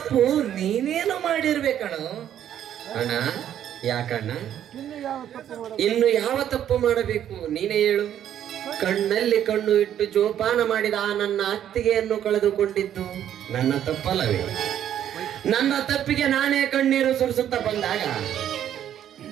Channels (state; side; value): quieter; left; 10.5 dB